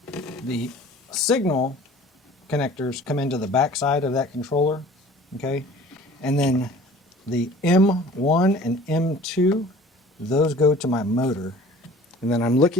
The signal connectors come into the back side of that controller, okay? And then the M1 and M2, those go to my motor. And then I'm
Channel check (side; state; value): both; normal; correlation 0.47